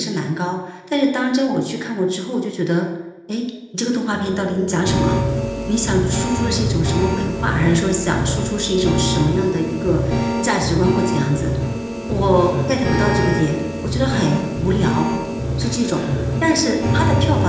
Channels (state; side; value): identical; both; correlation 1.00